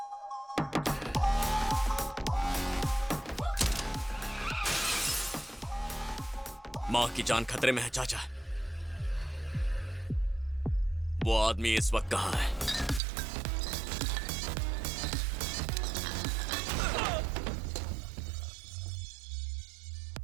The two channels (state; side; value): drops out; left; at 13.0 s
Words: माँ की जान खतरे में है चाचा। वो आदमी इस वक्त कहां है?